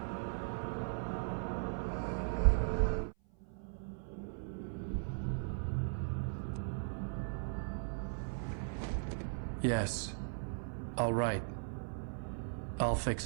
Yes. I'll write. I'll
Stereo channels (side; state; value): left; silent; 52 dB below the other